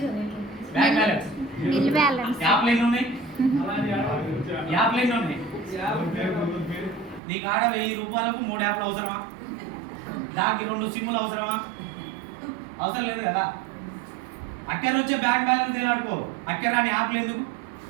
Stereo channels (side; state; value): left; drops out; at 7.2 s